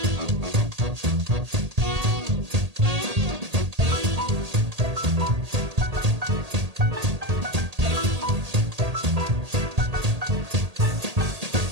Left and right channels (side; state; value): left; late; 1.8 ms